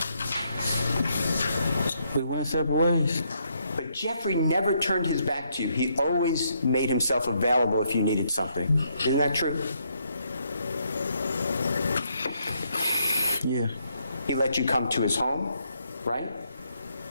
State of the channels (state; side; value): inverted; both; correlation -0.74